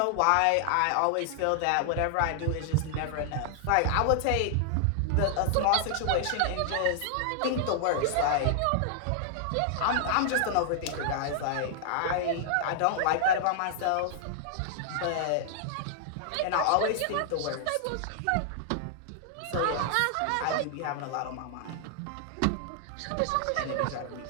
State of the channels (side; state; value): both; different; correlation 0.00